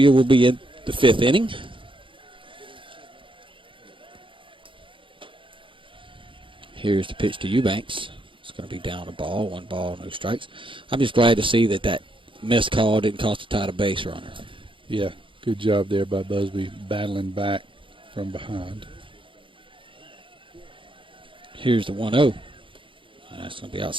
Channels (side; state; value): left; late; 0.25 ms